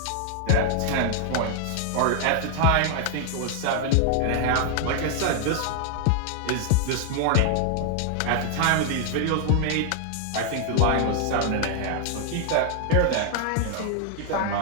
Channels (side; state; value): both; different; correlation 0.00